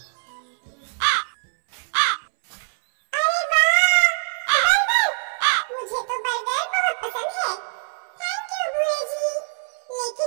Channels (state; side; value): silent; left; 63 dB below the other